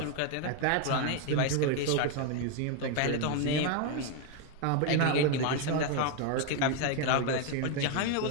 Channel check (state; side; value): different; both; correlation 0.01